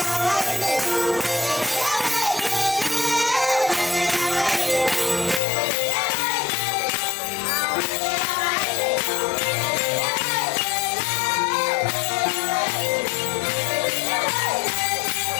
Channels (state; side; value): drops out; right; at 5.4 s